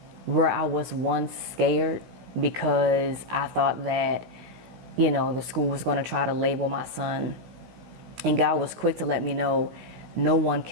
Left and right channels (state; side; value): late; left; 16 ms